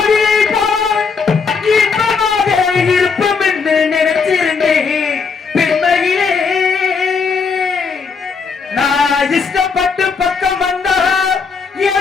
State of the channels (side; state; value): right; quieter; 5.3 dB